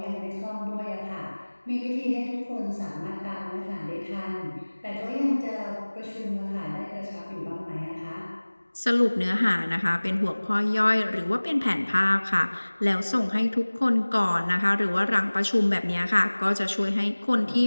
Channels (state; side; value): inverted; both; correlation -1.00